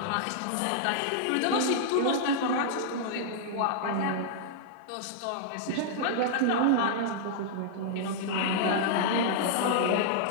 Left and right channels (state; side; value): different; both; correlation -0.01